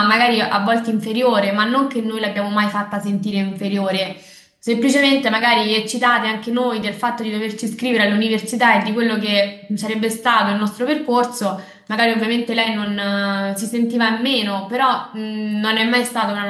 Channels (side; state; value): both; identical; correlation 1.00